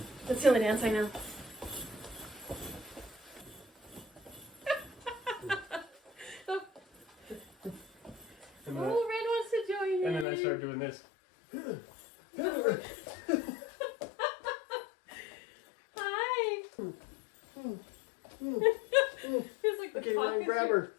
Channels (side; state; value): right; drops out; at 10.2 s